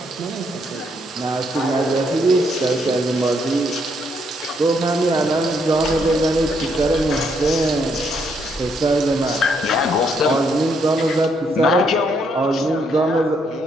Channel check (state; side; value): normal; both; correlation 0.73